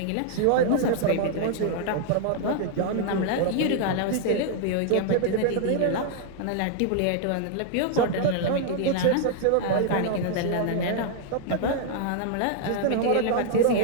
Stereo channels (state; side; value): different; both; correlation -0.01